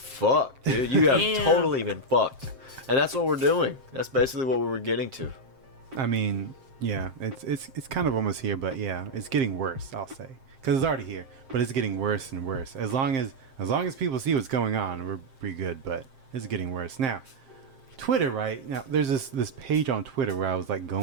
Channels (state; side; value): late; left; 7.6 ms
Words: dude. You have Damn. totally been fucked. And that's what we're doing. That's basically what we were getting to. I mean, yeah, it's kind of almost here, but yeah, it's getting worse, I'll say. Because it's already here, but it's getting worse and worse. As long as people see what's going on, we're pretty good, but it's getting worse. Now, Twitter, right? Now, there's this page on Twitter where I was like